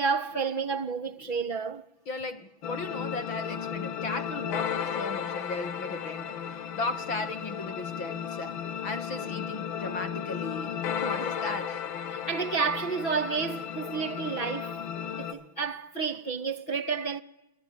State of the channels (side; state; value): right; late; 6.0 ms